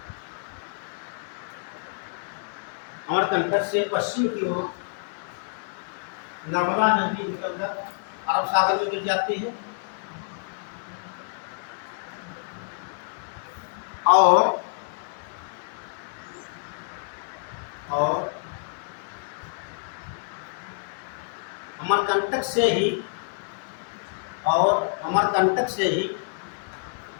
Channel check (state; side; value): silent; right; digital silence